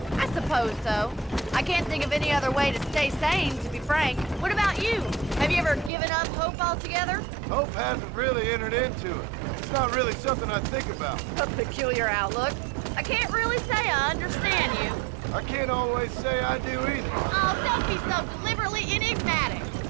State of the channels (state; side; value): drops out; left; at 5.9 s